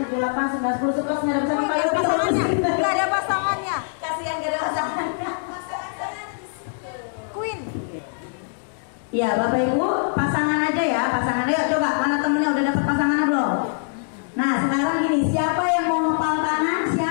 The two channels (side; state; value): right; silent; digital silence